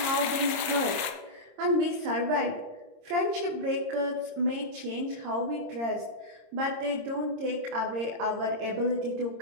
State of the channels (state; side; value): late; left; 26 ms